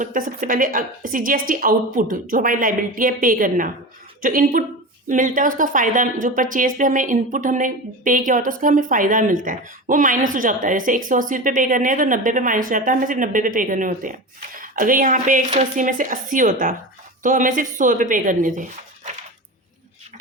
है सबसे पहले CGST आउटपुट, जो हमारी लाइबिलिटी है पे करना, जो इनपुट मिलता है उसका फ़ायदा, जो परचेज पे हमें इनपुट हमने पे किया होता है उसका हमें फ़ायदा मिलता है, वो माइनस हो जाता है। जैसे 180 रुपये पे करने हैं तो 90 पे माइनस हो जाता है, हमें सिर्फ 90 पे पे करने होते हैं। अगर यहाँ पे 180 में से 80 होता तो हमें सिर्फ 100 रुपये पे करने थे।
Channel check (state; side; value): normal; both; correlation 0.27